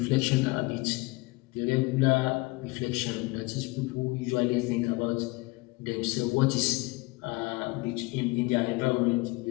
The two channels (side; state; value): right; quieter; 24.3 dB